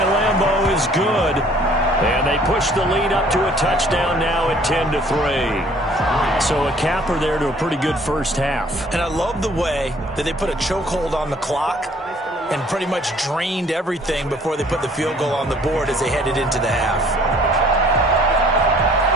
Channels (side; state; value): both; normal; correlation 0.57